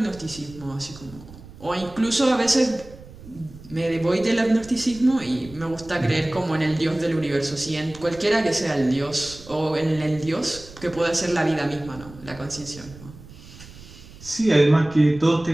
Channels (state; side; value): noise; right; rumble, 19 dB below the sound